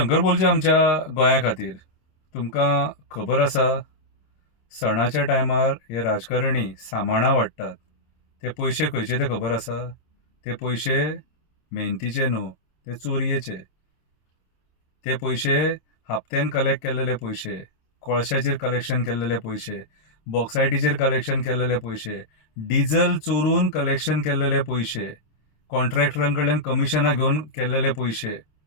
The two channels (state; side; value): late; right; 26 ms